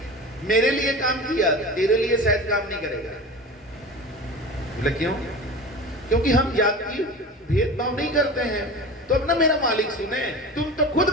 मेरे लिए काम किया, तेरे लिए शायद काम नहीं करेगा। बोले क्यों? क्योंकि हम जाति भेदभाव नहीं करते हैं, तो अपना मेरा मालिक सुने, तुम तो खुद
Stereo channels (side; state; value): both; normal; correlation 0.34